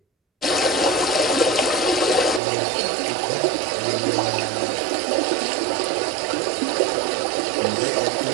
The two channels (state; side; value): drops out; left; at 2.4 s